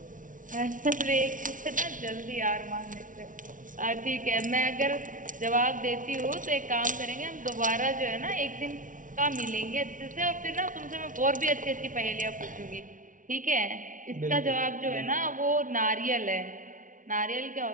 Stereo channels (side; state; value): left; late; 0.38 ms